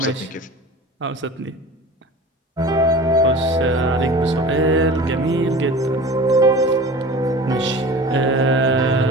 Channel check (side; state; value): both; normal; correlation 0.38